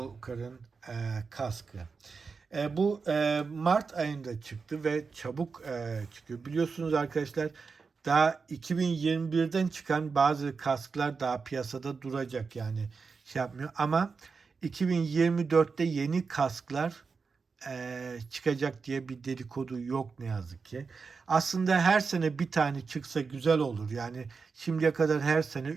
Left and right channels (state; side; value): quieter; left; 4.9 dB